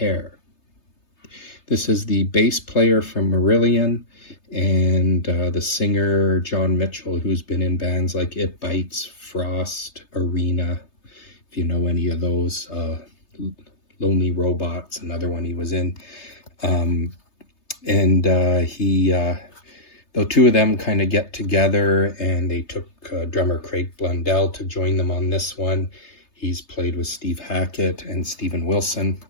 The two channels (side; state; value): right; late; 3.3 ms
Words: This is the bass player from Marillion and the singer John Mitchell, who's been in bands like It Bites, Frost, Arena, if you know any of those. Lonely Robots, another one he was in. The 2 of them kind of get together, and they took drummer Craig Blundell to join them on this one. He's played with Steve Hackett and Steven Wilson.